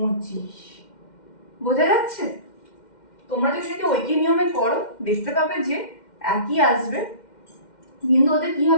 বোঝা যাচ্ছে? তোমরা যদি এটা ঐকিক নিয়মে করো দেখতে পাবে যে একই আসবে, কিন্তু ওদের কি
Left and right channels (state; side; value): late; right; 2.1 ms